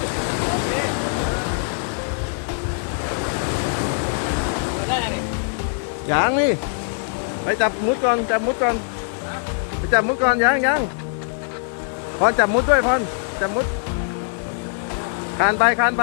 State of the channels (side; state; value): right; silent; digital silence